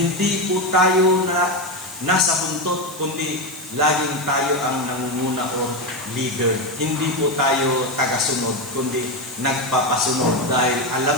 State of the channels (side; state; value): right; noise; hiss, 15 dB below the sound